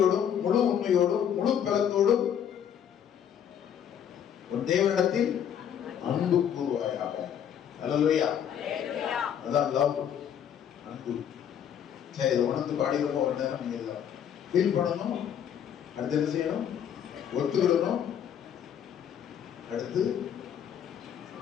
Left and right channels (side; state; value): right; quieter; 9.0 dB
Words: முழு உண்மையோடும் முழு பலத்தோடும் உன் தேவனிடத்தில் அன்பு கூறுவாயாக. அல்லேலூயா. அதான் லவ், அன்பு. சரி, இதை உணர்ந்து பாடிடுவோம். ஒரு நேரம் நீங்க ஃபீல் பண்ணணும். அடுத்து என்ன செய்யணும்? ஒத்துக்கிடணும். அடுத்து